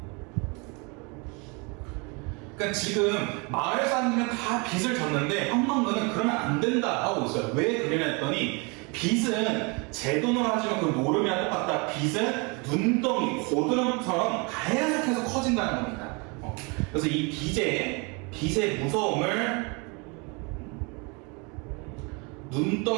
그러니까 지금 마을 사람들은 다 빚을 졌는데 황망근은 그러면 안 된다 하고 있어요. 왜 그러냐 했더니 빚은 제 돈으로 하지만 그 노름이랑 똑같다. 빚은 눈덩이, 고드름처럼 계속해서 커진다는 겁니다. 그래서 이 빚의 무서움을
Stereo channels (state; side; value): quieter; left; 30.7 dB